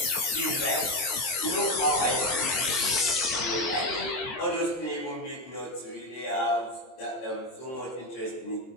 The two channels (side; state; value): right; late; 23 ms